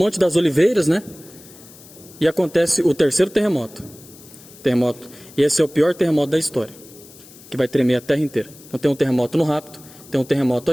das Oliveiras, né? E acontece o 3º terremoto. E esse é o pior terremoto da história, que vai tremer a terra inteira. Então tem um terremoto no rapto, tem um terremoto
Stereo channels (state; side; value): noise; left; hiss, 21 dB below the sound